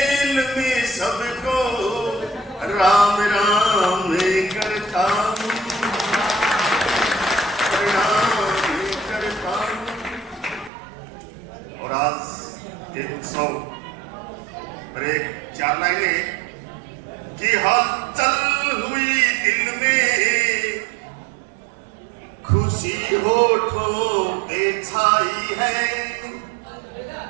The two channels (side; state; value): left; drops out; at 10.7 s